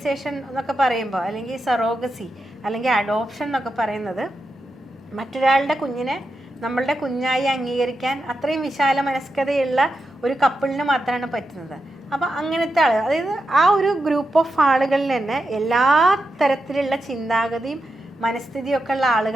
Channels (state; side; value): normal; both; correlation 0.88